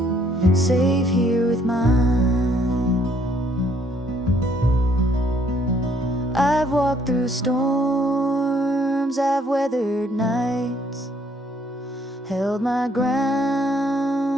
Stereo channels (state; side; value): normal; both; correlation 0.65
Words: safe here with mine. I've walked through storms, I've weathered nights, held my